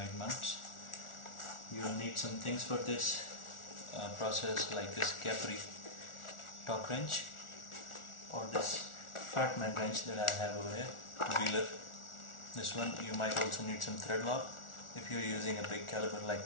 mounts. You will need some things for this process, like this Capri torque wrench or this fat man wrench that I have over here, wheeler. This one. You might also need some thread lock if you're using a big caliber like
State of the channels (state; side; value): late; right; 1.4 ms